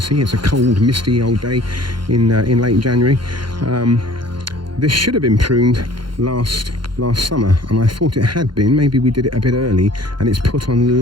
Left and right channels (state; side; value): late; left; 0.72 ms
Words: it's a cold, misty old day in late January. This should have been pruned last summer, and I thought it had been. Maybe we did it a bit early, and it's put on